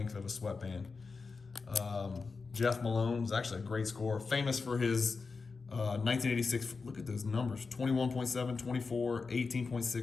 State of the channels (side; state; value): right; quieter; 4.5 dB